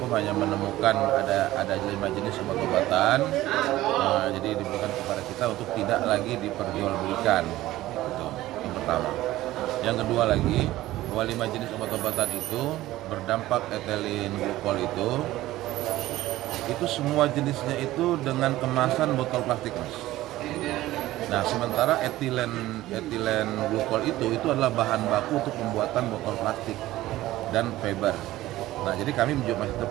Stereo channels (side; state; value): left; quieter; 16.0 dB